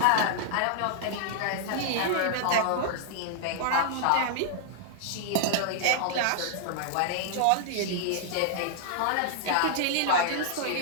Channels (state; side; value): different; both; correlation -0.01